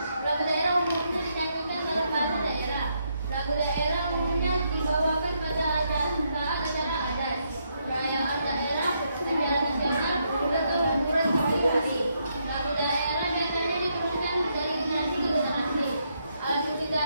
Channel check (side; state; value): both; inverted; correlation -0.77